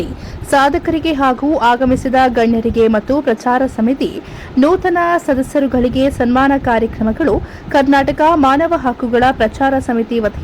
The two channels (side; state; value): both; identical; correlation 1.00